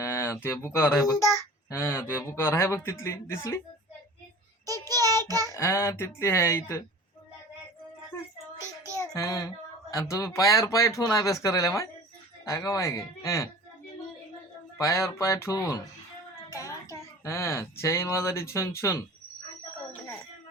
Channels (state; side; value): normal; both; correlation 0.40